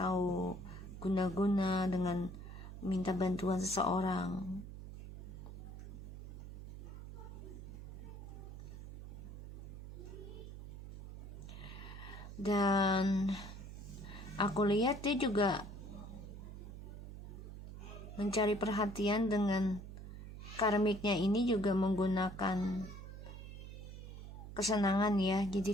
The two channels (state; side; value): noise; right; hum, 11 dB below the sound